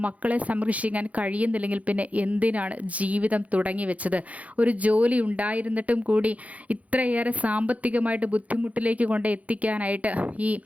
മക്കളെ സംരക്ഷിക്കാൻ കഴിയുന്നില്ലെങ്കിൽ പിന്നെ എന്തിനാണ് ജീവിതം തുടങ്ങി വെച്ചത്? ഒരു ജോലി ഉണ്ടായിരുന്നിട്ടും കൂടി ഇത്രയേറെ സാമ്പത്തികമായിട്ട് ബുദ്ധിമുട്ടിലേക്ക് കൊണ്ട് എത്തിക്കാനായിട്ട് ഈ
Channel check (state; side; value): late; left; 0.069 ms